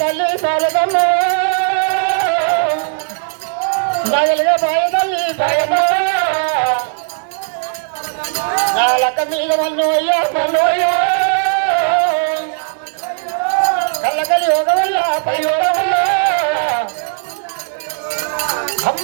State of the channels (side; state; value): left; silent; 69 dB below the other